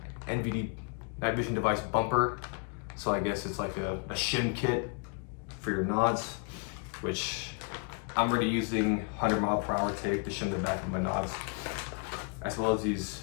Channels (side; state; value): right; quieter; 39.8 dB